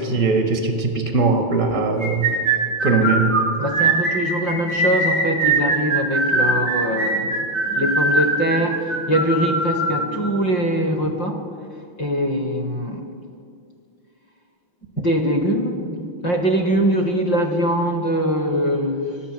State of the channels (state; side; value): late; right; 5.6 ms